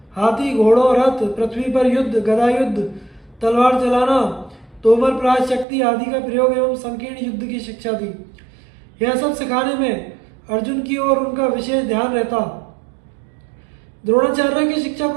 हाथी, घोड़ों, रथ, पृथ्वी पर युद्ध, गदा युद्ध, तलवार चलाना, तोमर प्राय शक्ति आदि का प्रयोग एवं संकीर्ण युद्ध की शिक्षा दी। यह सब सिखाने में अर्जुन की ओर उनका विशेष ध्यान रहता। द्रोणाचार्य की शिक्षा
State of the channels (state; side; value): drops out; left; at 5.7 s